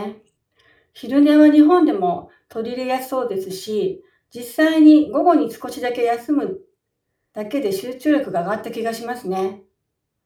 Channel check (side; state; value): both; identical; correlation 1.00